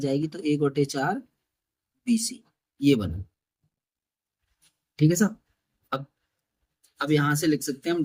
तो 1 बटे 4 BC, ये बना। ठीक है साहब, अब यहां से लिख सकते हैं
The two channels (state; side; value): identical; both; correlation 1.00